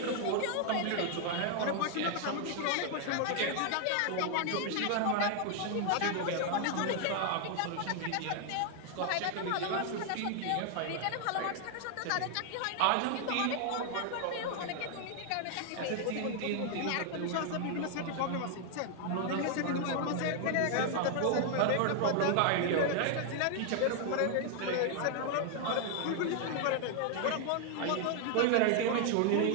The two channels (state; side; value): different; both; correlation 0.00